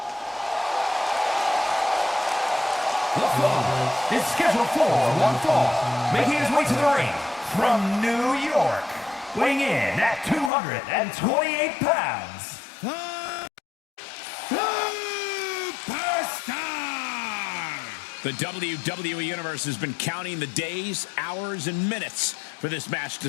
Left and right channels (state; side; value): drops out; right; at 10.5 s